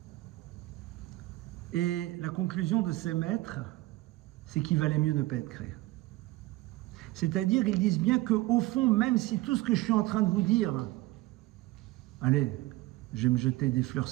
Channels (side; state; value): left; quieter; 18.6 dB